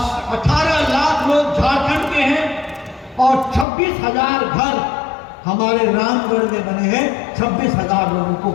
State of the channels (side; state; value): right; drops out; at 3.7 s